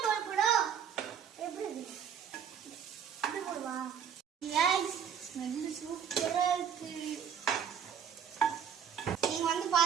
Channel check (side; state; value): left; quieter; 8.0 dB